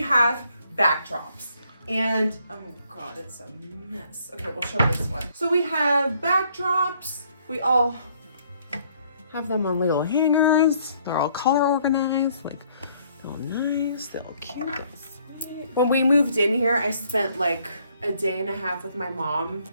have backdrops. And, oh God, it's a mess. Okay, we'll show this one. So we have backdrops. We all have them on little hangers. They're all color organized, like, all nice, they're all cute, they're sweet. When we moved in here, I spent like a day and a half with my mom,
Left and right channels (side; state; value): both; inverted; correlation -0.66